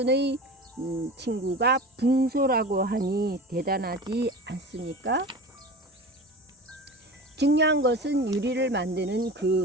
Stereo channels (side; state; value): both; normal; correlation 0.34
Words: 친구가 붕소라고 하니 대단하지 않습니까? 중요한 것은 유리를 만드는